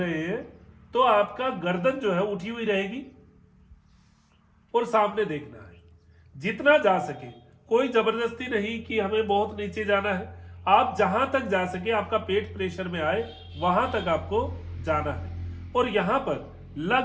हैं तो आपका गर्दन जो है उठी हुई रहेगी और सामने देखना है जितना जा सके। कोई जबरदस्ती नहीं कि हमें बहुत नीचे जाना है, आप जहां तक जा सके, आपका पेट प्रेशर में आए वहां तक आपको जाना है और यहां पर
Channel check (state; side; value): identical; both; correlation 1.00